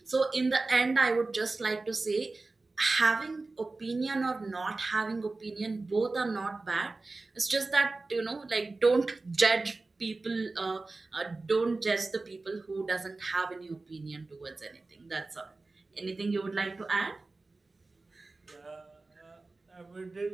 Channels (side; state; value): left; quieter; 3.5 dB